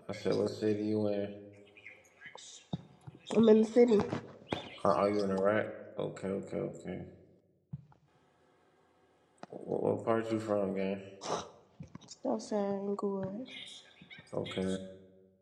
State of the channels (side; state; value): both; identical; correlation 1.00